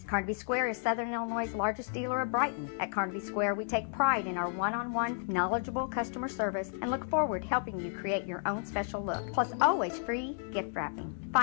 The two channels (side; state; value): right; silent; digital silence